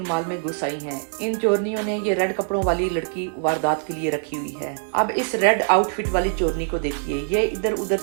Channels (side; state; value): left; silent; digital silence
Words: मॉल में घुस आई हैं। इन चोरनियों ने ये रेड कपड़ों वाली लड़की वारदात के लिए रखी हुई है। अब इस रेड आउटफिट वाली चोरनी को देखिए, ये इधर उधर